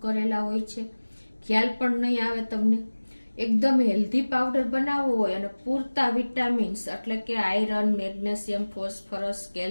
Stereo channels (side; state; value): both; inverted; correlation -1.00